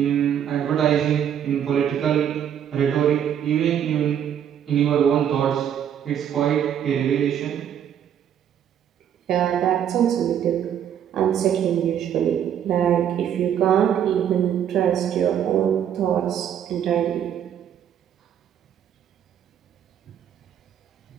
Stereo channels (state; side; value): quieter; left; 9.3 dB